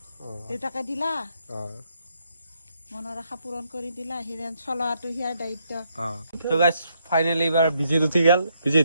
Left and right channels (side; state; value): both; inverted; correlation -0.75